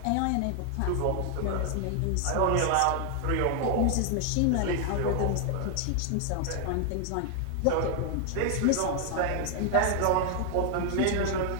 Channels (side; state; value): both; different; correlation 0.00